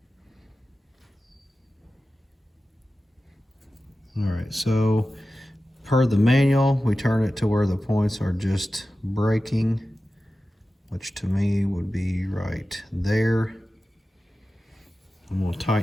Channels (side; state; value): both; normal; correlation 0.94